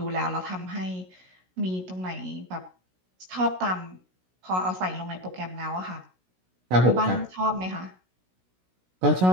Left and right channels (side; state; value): left; late; 16 ms